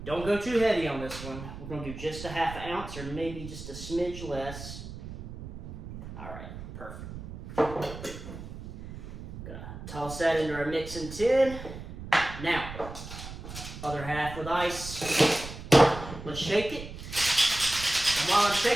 don't go too heavy on this one. We're gonna do just 1/2 ounce or maybe just a smidge less. All right, perfect. Gonna toss that into our mixing tin. Now, other half with ice. Let's shake it. And while I'm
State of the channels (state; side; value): noise; right; rumble, 11 dB below the sound